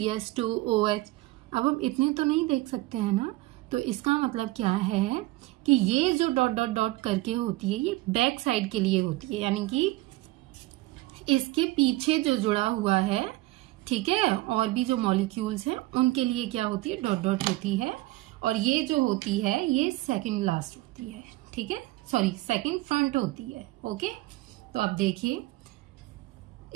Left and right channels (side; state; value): left; quieter; 19.0 dB